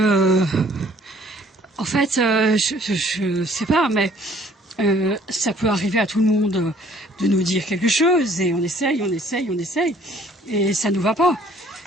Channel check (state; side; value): normal; both; correlation 0.58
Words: en fait, je sais pas, mais ça peut arriver à tout le monde de nous dire quelque chose, et on essaye, et ça nous va pas.